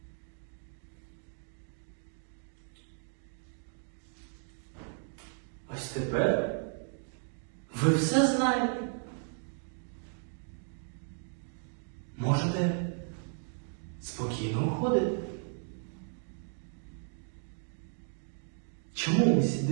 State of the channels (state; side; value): silent; left; 55 dB below the other